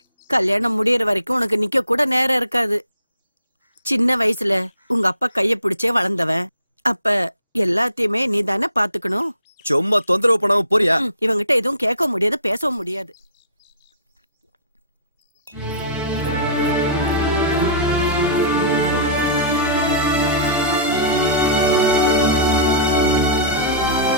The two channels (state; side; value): inverted; both; correlation -0.46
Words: கல்யாணம் முடியற வரைக்கும் உனக்கு நிக்க கூட நேரம் இருக்காது. சின்ன வயசுல உங்க அப்பா கைய பிடிச்சே வளர்ந்தவன். அப்ப எல்லாத்தையுமே நீ தானே பாத்துக்கணும். சும்மா தொந்தரவு பண்ணாம போறியா? இவங்கிட்ட எதுவும் கேட்க முடியாது, பேசவும் முடியாது.